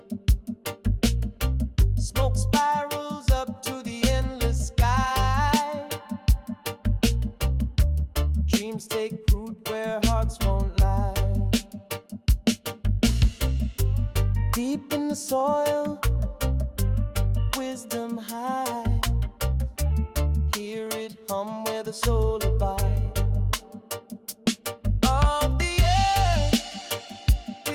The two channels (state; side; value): identical; both; correlation 1.00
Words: Smoke spirals up to the endless sky. Dreams take root where hearts won't lie. Deep in the soil, wisdom high. Hear it hum where the soul abide. Of the earth